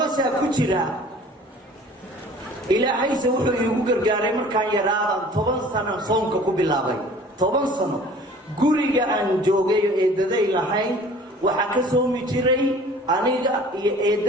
ku jira ilaahayse wuxuu iigu gargaaray markaan yaraadan 10 sano soonka ku bilaabay 10 sano guriga aan joogay eedaday lahayn waxaa ka soomi jiray aniga iyo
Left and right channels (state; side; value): normal; both; correlation 0.48